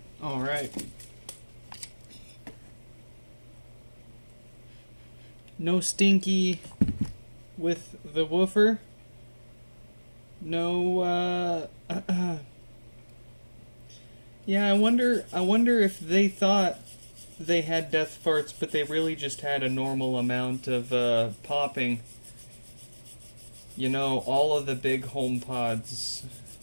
All right. No stinky with the woofer. No, yeah, I wonder if they thought they had death farts, but they really just had a normal amount of, popping. You know, all of the big HomePods,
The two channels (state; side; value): inverted; both; correlation -1.00